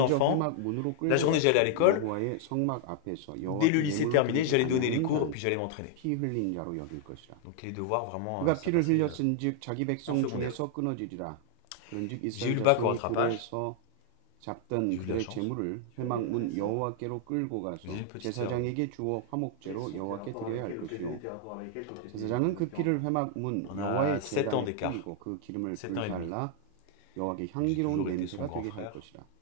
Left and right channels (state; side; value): different; both; correlation 0.00